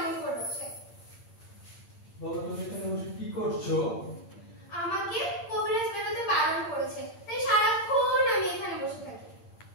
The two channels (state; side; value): late; right; 8.8 ms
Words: করছে। বলো, তুমি এখানে বসে কি করছো? আমাকে কবিরাজ বেরোতে বারণ করেছে, তাই সারাক্ষণ আমি এখানে বসে থাকি।